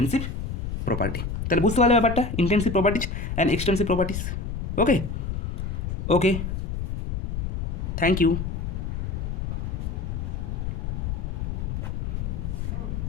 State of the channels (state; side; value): noise; left; rumble, 3 dB below the sound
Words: প্রপার্টি। তাহলে বুঝতে পারলে ব্যাপারটা, intensive properties and extensive properties. Okay okay, thank you.